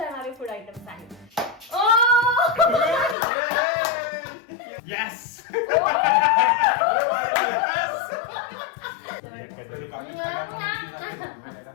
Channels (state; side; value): drops out; right; at 3.2 s